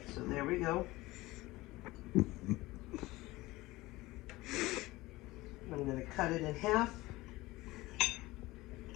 There we go. I'm going to cut it in half.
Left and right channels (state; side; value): quieter; right; 19.6 dB